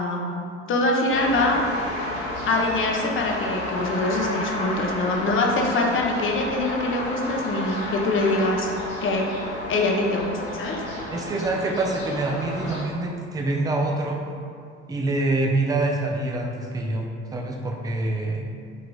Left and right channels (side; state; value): both; normal; correlation 0.31